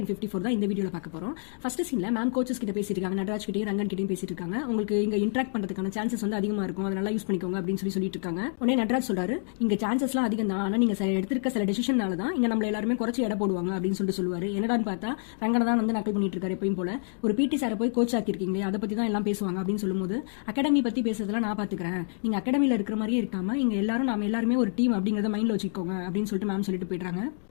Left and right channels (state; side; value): silent; right; 57 dB below the other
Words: 54 தான் இந்த வீடியோவில் பார்க்க போகிறோம். ஃபர்ஸ்ட் சீனில் மேம் கோச்சஸ் கிட்ட பேசிட்டு இருக்காங்க, நடராஜ் கிட்டையும் ரங்கன் கிட்டையும் பேசிட்டு இருக்காங்க. உங்களுக்கு இங்கே இன்ட்ராக்ட் பண்ணுறதுக்கான சான்சஸ் வந்து அதிகமாக இருக்கும், அதை நல்லா யூஸ் பண்ணிக்கோங்க அப்படின்னு சொல்லிட்டு இருக்காங்க. உடனே நடராஜ் சொல்றாரு, இங்கே சான்சஸ்லாம் அதிகம் தான், ஆனால் நீங்கள் எடுத்திருக்க சில டெசிஷனால தான் இங்கே நம்மள எல்லாருமே குறைச்சி எடை போடுவாங்க அப்படின்னு சொல்லுவாரு. என்னடான்னு பார்த்தா ரங்கனை தான் வந்து நக்கல் பண்ணிட்டு இருக்காரு எப்பயும் போல. ஒரு பிடி சாரை போய் கோச் ஆக்கிருக்கீங்களே, அதை பற்றி தான் எல்லாம் பேசுவாங்க அப்படின்னு சொல்லும்போது, அகாடமி பற்றி பேசுறதுலாம் நான் பார்த்துக்கிறேன், நீங்கள் அகாடமியில் இருக்கிற மாதிரியே இருக்காம இங்கே நாம எல்லாருமே ஒரு டீம் அப்படிங்கிறத மைண்டில் வச்சுக்கோங்க அப்படின்னு சொல்லிட்டு மேம் சொல்லிட்டு போயிடுறாங்க.